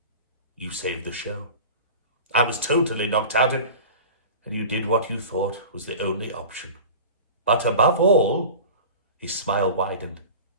"You saved the show. I was totally knocked out, and you did what you thought was the only option. But above all," his smile widened,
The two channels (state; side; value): inverted; both; correlation -0.36